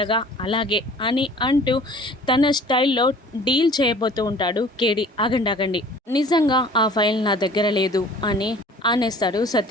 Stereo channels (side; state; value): both; normal; correlation 0.49